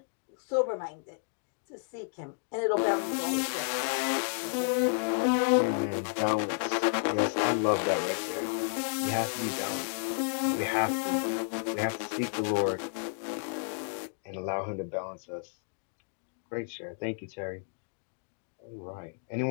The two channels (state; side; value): silent; right; digital silence